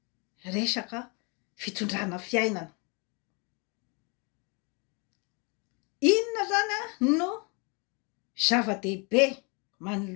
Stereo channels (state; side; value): quieter; right; 32.3 dB